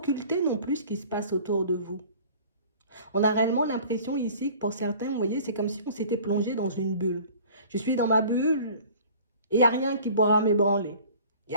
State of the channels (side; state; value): both; inverted; correlation -0.47